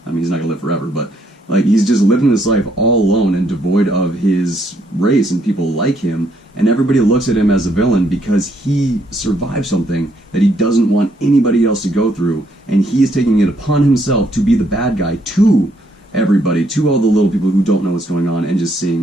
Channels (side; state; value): both; normal; correlation 0.71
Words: I mean, he's not gonna live forever, but like he's just living this life all alone and devoid of his race and people like him, and everybody looks at him as a villain because he survived something that he doesn't want anybody else to go through, and he is taking it upon himself to be the bad guy to everybody, to all the little people who don't know what's going on and just